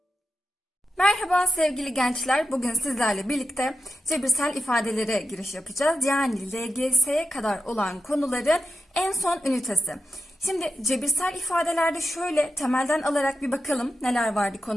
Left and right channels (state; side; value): normal; both; correlation 0.88